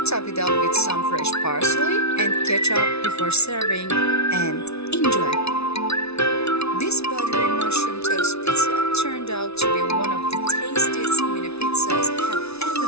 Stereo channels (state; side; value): late; right; 0.80 ms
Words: Top it up with some fresh parsley and ketchup before serving, and